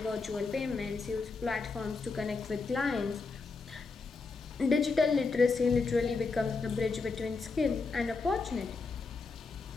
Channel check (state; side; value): quieter; right; 4.3 dB